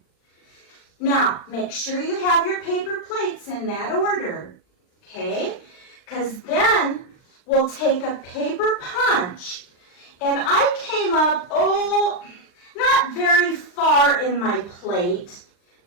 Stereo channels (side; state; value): right; late; 39 ms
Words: Now, make sure you have your paper plates in that order, okay? Because then we'll take a paper punch. And I came up, not very far in my plate.